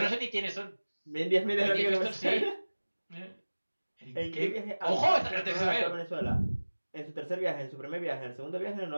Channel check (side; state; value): both; inverted; correlation -1.00